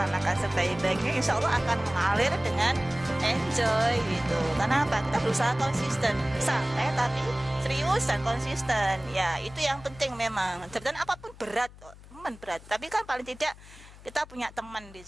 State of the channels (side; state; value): left; noise; hum, 20 dB below the sound